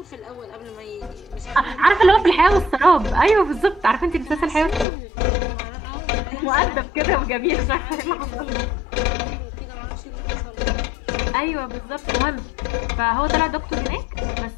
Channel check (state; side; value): drops out; right; at 4.9 s